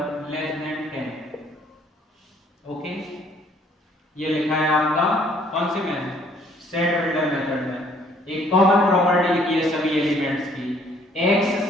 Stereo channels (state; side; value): normal; both; correlation 0.61